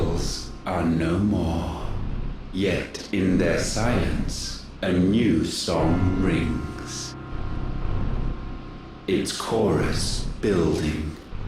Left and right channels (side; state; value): both; identical; correlation 1.00